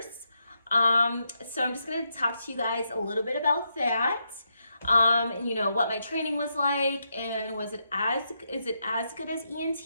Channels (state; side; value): inverted; both; correlation -0.82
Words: So I'm just going to talk to you guys a little bit about that. And what my training was like, and is it as good as ENT,